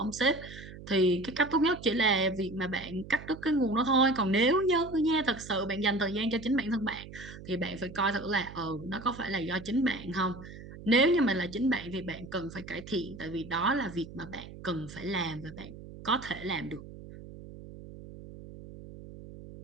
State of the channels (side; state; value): right; noise; hum, 15 dB below the sound